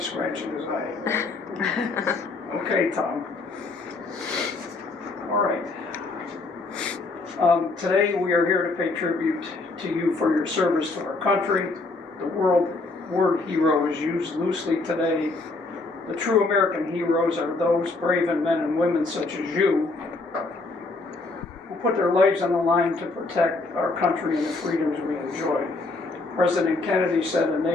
scratching his eye. Okay, Tom. All right. Today we are here to pay tribute to you for your service to our country. The word hero is used loosely today. The true American heroes are those brave men and women such as you who put their lives on the line to protect our country and the freedoms we enjoy. President Kennedy said a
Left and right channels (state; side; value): quieter; right; 3.5 dB